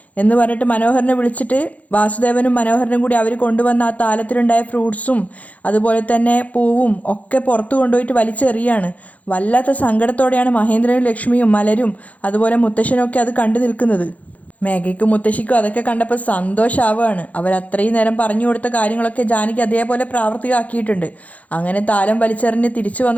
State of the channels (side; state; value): right; late; 0.070 ms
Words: എന്ന് പറഞ്ഞിട്ട് മനോഹരനെ വിളിച്ചിട്ട് വാസുദേവനും മനോഹരനും കൂടി അവർ കൊണ്ടുവന്ന ആ താലത്തിലുണ്ടായ ഫ്രൂട്ട്സും അതുപോലെ തന്നെ പൂവും ഒക്കെ പുറത്തു കൊണ്ടുപോയിട്ട് വലിച്ചെറിയാണ്. വല്ലാത്ത സങ്കടത്തോടെയാണ് മഹേന്ദ്രനും ലക്ഷ്മിയും മലരും അതുപോലെ മുത്തശ്ശനും ഒക്കെ അത് കണ്ടു നിൽക്കുന്നത്. മേഘയ്ക്കും മുത്തശ്ശിക്കും അതൊക്കെ കണ്ടപ്പോൾ സന്തോഷമാവുകയാണ്. അവരത്രയും നേരം പറഞ്ഞു കൊടുത്ത കാര്യങ്ങളൊക്കെ ജാനകി അതേപോലെ പ്രാവർത്തികമാക്കിയിട്ടുണ്ട്. അങ്ങനെ താലം വലിച്ചെറിഞ്ഞ് തിരിച്ചു